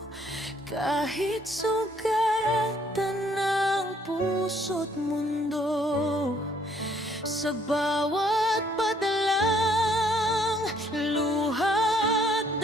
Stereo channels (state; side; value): normal; both; correlation 0.65